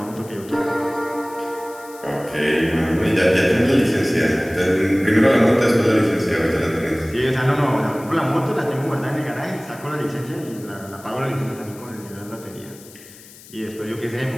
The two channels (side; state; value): left; noise; hiss, 21 dB below the sound